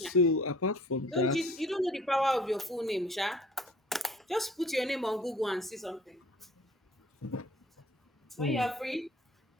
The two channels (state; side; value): normal; both; correlation 0.51